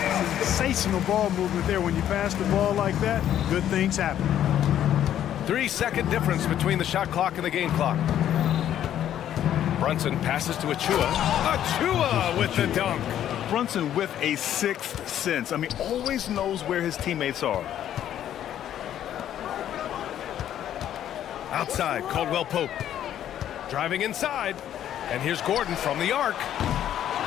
Sensational ball movement there. When you pass the ball like that, good things happen. 3-second difference between the shot clock and the game clock. Brunson passes to Achua. Achua with the dunk. Brunson with a 6th sense. I mean, always knows where his teammates are. Outside, Caldwell Pope. Driving inside. And here's Gordon from the arc.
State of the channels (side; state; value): right; quieter; 10.9 dB